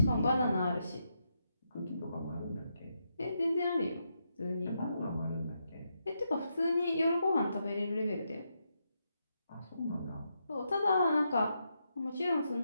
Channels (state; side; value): inverted; both; correlation -0.82